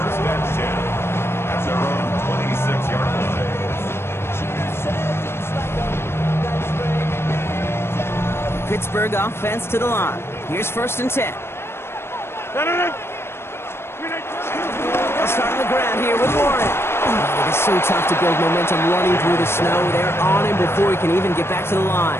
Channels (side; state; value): right; late; 0.12 ms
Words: and 10 at their own 26-yard line. Pittsburgh offense to the line. Here's first and 10. They'll start on the ground here with Warren. Oh, it is so tough to build momentum running through the snow. They're on him before he can even get back to the line.